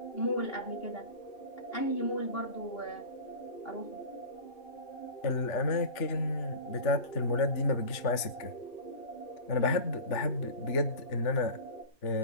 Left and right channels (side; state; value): right; late; 3.4 ms